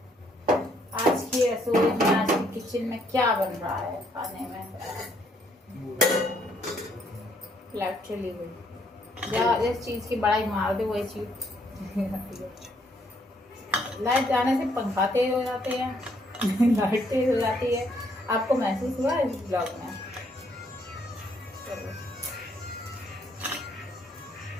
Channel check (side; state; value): both; normal; correlation 0.69